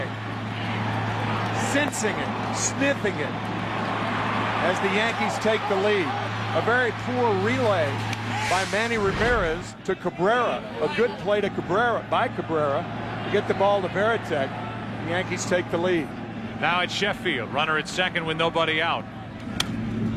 sensing it, sniffing it as the Yankees take the lead. A very poor relay by Manny Ramirez to Cabrera. A good play to Cabrera to get the ball to Veritek. The Yankees take the lead. Now it's Sheffield, runner at second with nobody out.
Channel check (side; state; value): both; identical; correlation 1.00